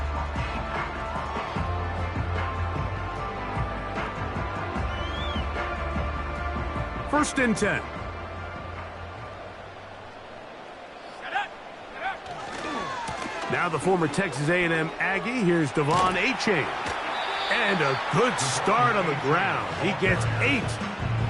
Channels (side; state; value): both; identical; correlation 1.00